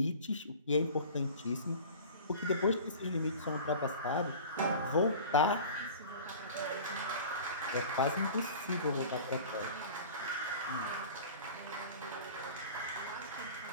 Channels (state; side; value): inverted; both; correlation -0.40